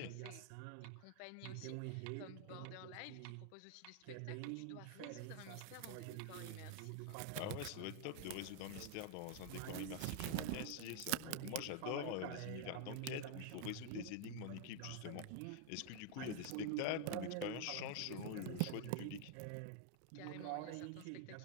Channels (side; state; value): both; different; correlation 0.00